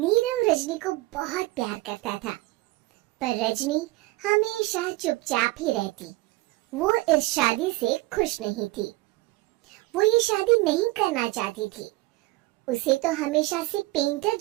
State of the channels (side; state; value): left; quieter; 19.8 dB